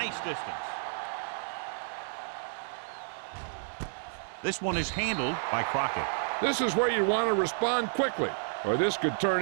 distance. This one is handled by Crockett. This is where you want to respond quickly, or this could turn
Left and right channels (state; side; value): silent; left; digital silence